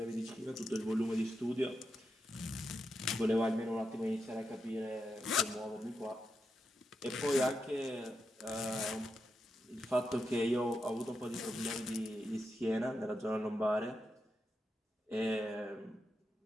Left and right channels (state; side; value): normal; both; correlation 0.86